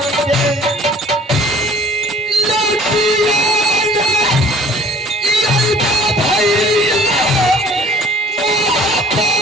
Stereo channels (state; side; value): normal; both; correlation 0.51